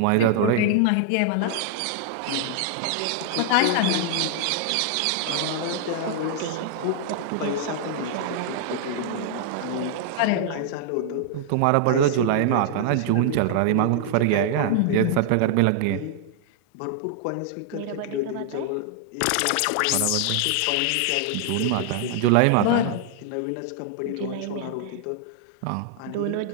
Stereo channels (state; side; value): different; both; correlation -0.01